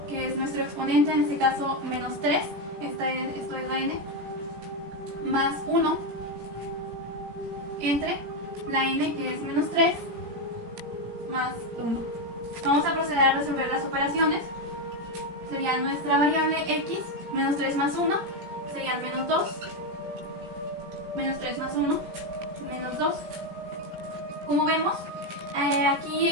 que es nuestro exponente, en este caso menos 3, esto es la n, más 1, entre la n, que es menos 3, más 1. Vamos a proceder a resolver las operaciones. Sería nuestra variable x, menos 3 más 1, serían menos 2, menos 3 más 1, menos 2. Como vemos, aquí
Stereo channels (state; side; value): late; left; 17 ms